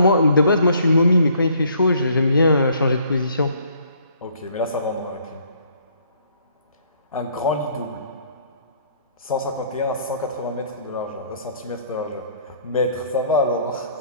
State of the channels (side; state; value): both; inverted; correlation -0.62